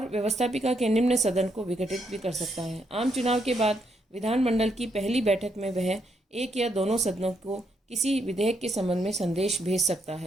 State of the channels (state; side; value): normal; both; correlation 0.77